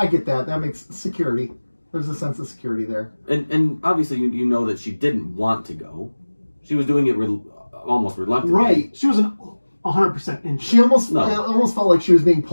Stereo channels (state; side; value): inverted; both; correlation -1.00